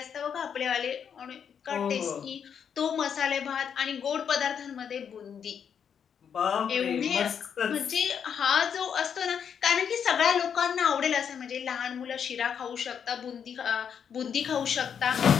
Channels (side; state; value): right; quieter; 7.6 dB